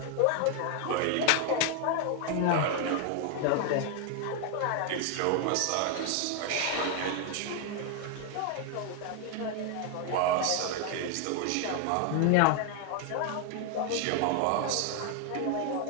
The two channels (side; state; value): both; different; correlation 0.00